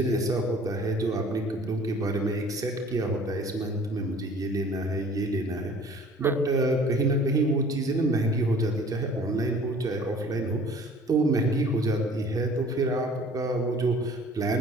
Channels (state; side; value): normal; both; correlation 0.50